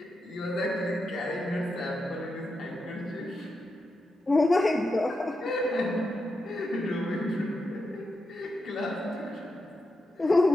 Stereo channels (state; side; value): normal; both; correlation 0.87